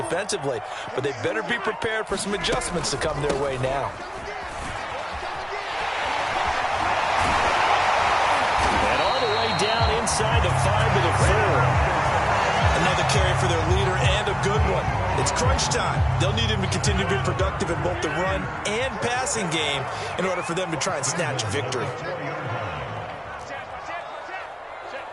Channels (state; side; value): identical; both; correlation 1.00